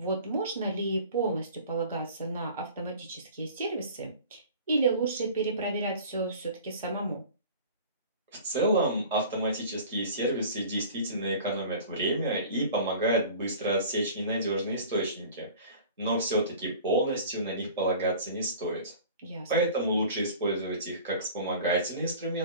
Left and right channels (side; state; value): both; inverted; correlation -0.43